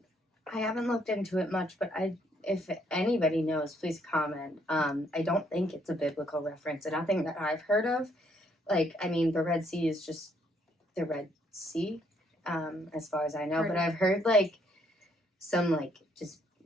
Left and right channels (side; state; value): both; normal; correlation 0.69